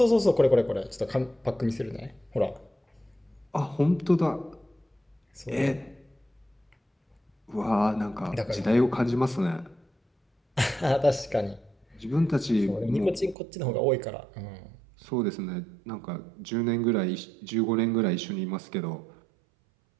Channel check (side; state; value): left; drops out; at 13.4 s